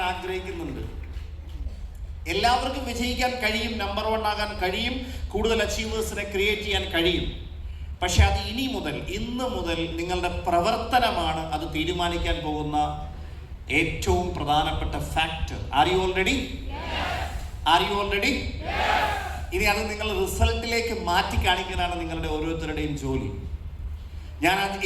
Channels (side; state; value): both; identical; correlation 1.00